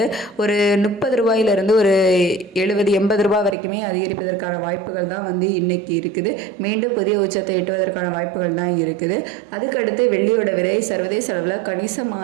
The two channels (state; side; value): drops out; left; at 3.6 s